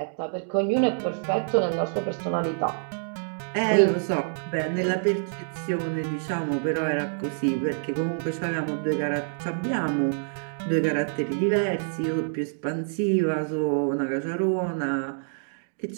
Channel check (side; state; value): left; silent; digital silence